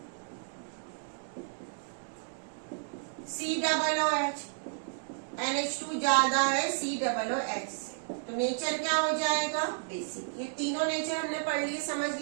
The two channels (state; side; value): silent; left; digital silence